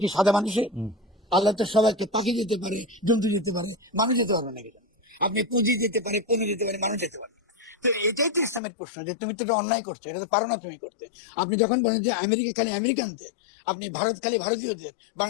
কি সাদা মানুষের? আল্লাহ তো সবাইকে, পাখি যেতে পারে, জন্তু যেতে পারে, মানুষ যেতে পারবে না। কেন? আপনি পুঁজি যেতে পারে, পণু যেতে পারে, মানুষ যেতে পারে। তো এটাই তো ইসলামের প্রশ্ন যে তুমি তো অন্যায় করছো, পারো না তুমি করতে। আপনি যখন বলেন যে আমেরিকা খালি আমেরিকানদের, আপনি ভারত খালি ভারতীয়দের,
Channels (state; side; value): drops out; right; at 8.6 s